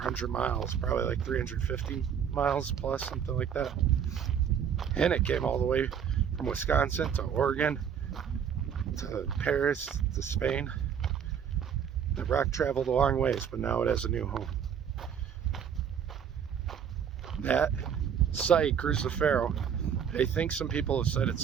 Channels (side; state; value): left; quieter; 8.1 dB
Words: miles, probably like 350 miles plus, something like that. And it came all the way from Wisconsin to Oregon to Paris to Spain. The rock traveled a long ways, but now it has a new home. That site, Cruz de Ferro, I think some people have said it's